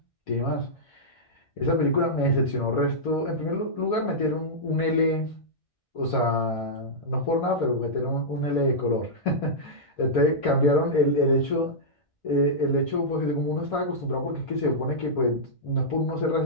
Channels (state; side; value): late; right; 1.6 ms